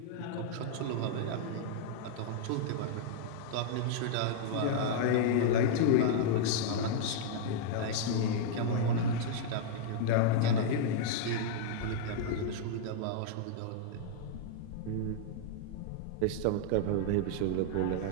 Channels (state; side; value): different; both; correlation -0.01